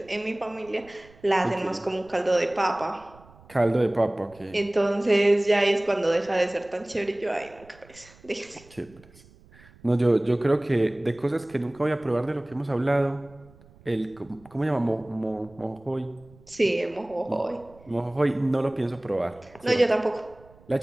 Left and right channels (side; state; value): right; noise; rumble, 25 dB below the sound